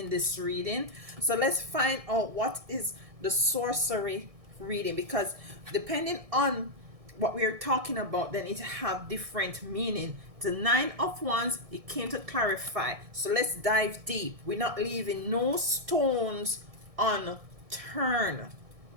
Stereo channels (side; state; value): left; late; 1.6 ms